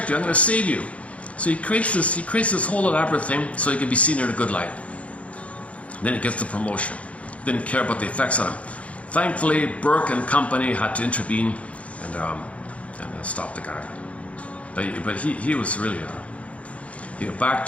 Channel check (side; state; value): right; late; 0.064 ms